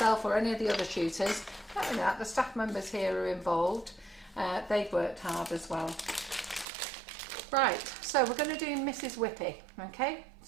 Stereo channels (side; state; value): left; drops out; at 6.7 s